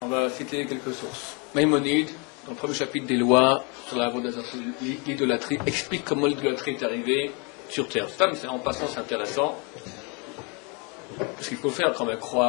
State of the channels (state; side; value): quieter; right; 32.7 dB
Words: On va citer quelques sources. Maïmonide, dans le premier chapitre des lois sur l'idolâtrie, explique comment l'idolâtrie est arrivée sur Terre. Ça, mais en passant, c'est intéressant, parce qu'il faut faire quand même